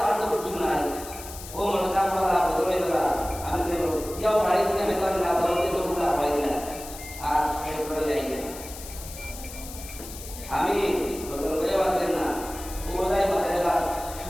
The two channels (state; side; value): noise; left; hiss, 13 dB below the sound